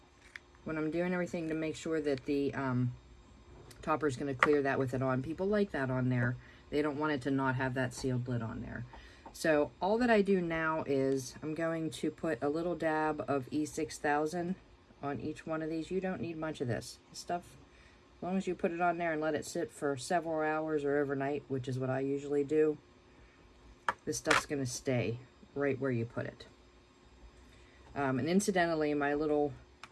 when I'm doing everything to make sure that the topper is going to clear that with it on. People like that on there. They don't want it to not have that sealed lid on there. So all that I do now is I'm going to put a little dab of E6000 on each one of these. You don't need much of this stuff. As long as you put it on there and let it sit for several hours or overnight, which is what I usually do, this stuff's going to stay right where you put it. And incidentally, my little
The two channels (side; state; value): both; identical; correlation 1.00